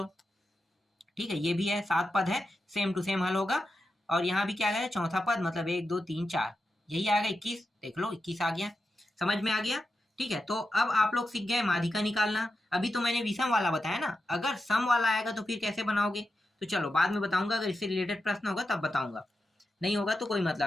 ठीक है, ये भी है, 7 पद है, सेम टू सेम हल होगा। और यहाँ भी क्या है? चौथा पद, मतलब 1 2 3 4, यही आएगा 21। देख लो, 21 आ गया। समझ में आ गया? ठीक है, तो अब आप लोग सीख गए माध्यिका निकालना। अभी तो मैंने विषम वाला बताया ना, अगर सम वाला आएगा तो फिर कैसे बनाओगे? तो चलो बाद में बताऊंगा, अगर इससे रिलेटेड प्रश्न होगा तब बताऊंगा, नहीं होगा तो कोई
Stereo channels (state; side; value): normal; both; correlation 0.89